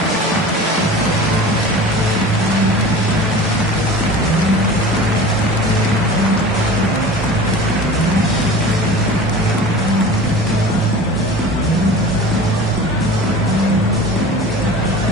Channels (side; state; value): both; normal; correlation 0.37